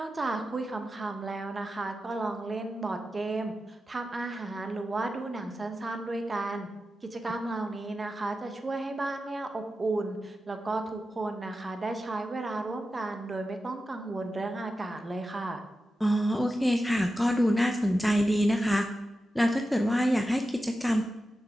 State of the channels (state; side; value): normal; both; correlation 0.91